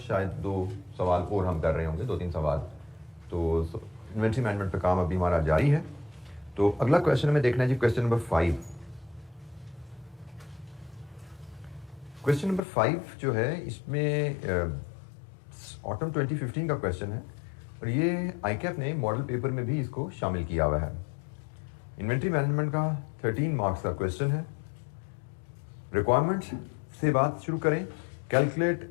2 सवाल और हम कर रहे होंगे, 2-3 सवाल। तो इन्वेंट्री मैनेजमेंट पे काम अभी हमारा जारी है। तो अगला क्वेश्चन हमें देखना है जी, क्वेश्चन नंबर 5। क्वेश्चन नंबर 5 जो है इसमें ऑटम 2015 का क्वेश्चन है और ये आईकैप ने मॉडल पेपर में भी इसको शामिल किया हुआ है। इन्वेंट्री मैनेजमेंट का 13 मार्क्स का क्वेश्चन है। रिक्वायरमेंट्स से बात शुरू करें।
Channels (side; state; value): right; drops out; at 12.6 s